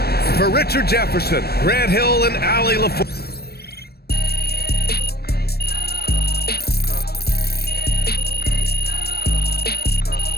For Richard Jefferson, Grant Hill, and Allie LaFleur.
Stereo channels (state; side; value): late; right; 0.46 ms